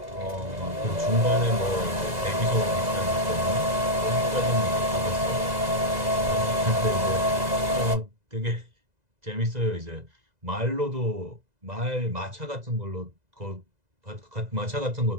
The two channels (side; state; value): left; late; 2.0 ms